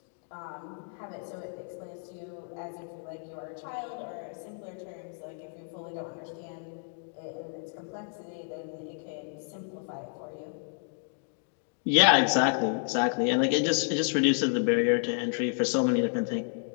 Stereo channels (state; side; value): silent; right; 57 dB below the other